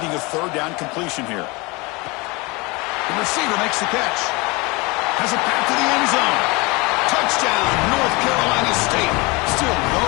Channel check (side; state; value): right; quieter; 25.8 dB